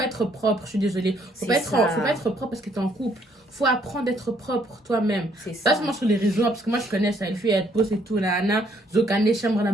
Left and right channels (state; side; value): normal; both; correlation 0.67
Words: être propre. Je suis désolée. Faut C'est pas ça. faut pas être propre parce que t'es en couple. Faut apprendre d'être propre toi-même. C'est Pas ça. seulement sur les réseaux, parce que moi, je connais ça. Les filles, elles posent et tout, là, là. Zokane, chambre, là,